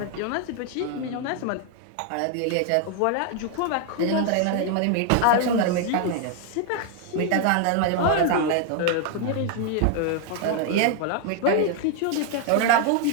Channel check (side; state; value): both; different; correlation 0.00